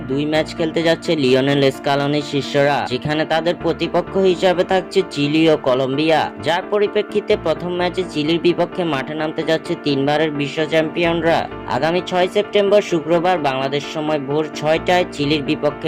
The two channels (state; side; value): identical; both; correlation 1.00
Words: 2 ম্যাচ খেলতে যাচ্ছে লিওনেল স্কালোনির শিষ্যরা, যেখানে তাদের প্রতিপক্ষ হিসাবে থাকছে চিলি ও কলম্বিয়া। যার পরিপ্রেক্ষিতে প্রথম ম্যাচে চিলির বিপক্ষে মাঠে নামতে যাচ্ছে 3 বারের বিশ্ব চ্যাম্পিয়নরা। আগামী 6 সেপ্টেম্বর শুক্রবার বাংলাদেশ সময় ভোর 6টায় চিলির বিপক্ষে